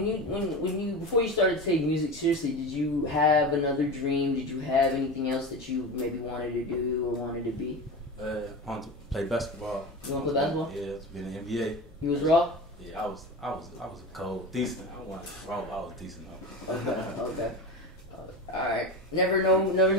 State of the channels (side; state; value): both; normal; correlation 0.26